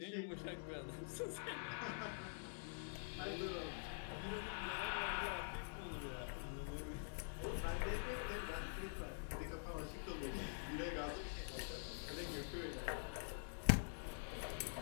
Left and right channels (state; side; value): silent; right; digital silence